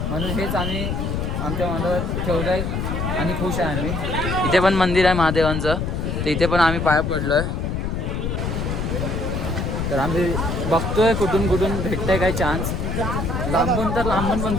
म्हणून हेच आम्ही आमच्या मनात ठेवलं आहे आणि खुश आहे आम्ही. इथे पण मंदिर आहे महादेवांचं. तर इथे पण आम्ही पाया पडलो आहे. तर आम्ही बघतोय कुठून कुठून भेटतंय काय चान्स. लांबून तर लांबून पण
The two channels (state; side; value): noise; left; rumble, 2 dB below the sound